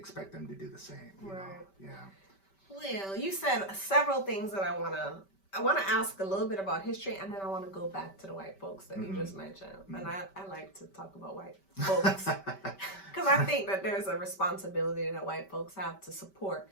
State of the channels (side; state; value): right; late; 5.2 ms